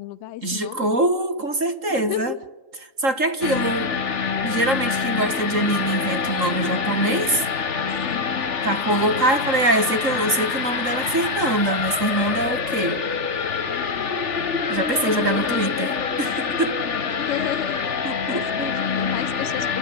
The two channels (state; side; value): late; left; 3.8 ms